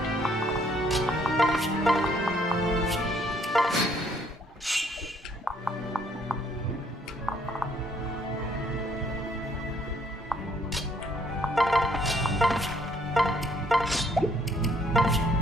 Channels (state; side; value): normal; both; correlation 0.66